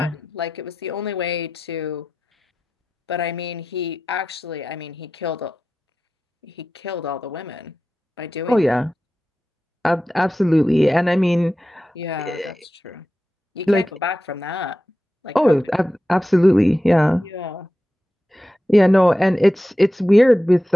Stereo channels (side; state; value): both; normal; correlation 0.92